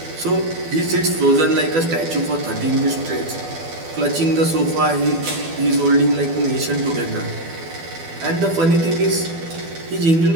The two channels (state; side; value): late; left; 12 ms